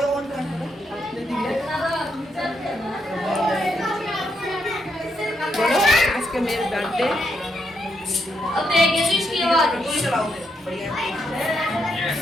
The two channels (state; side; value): normal; both; correlation 0.79